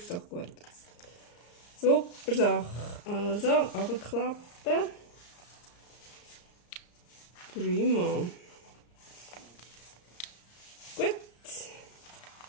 doch gut aus. Super Sache. Also, runterklappen. Prima. Gut.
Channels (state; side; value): late; right; 34 ms